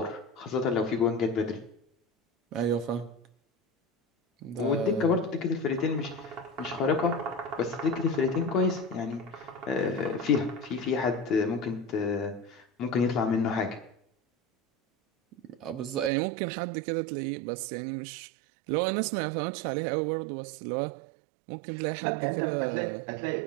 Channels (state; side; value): drops out; left; at 16.1 s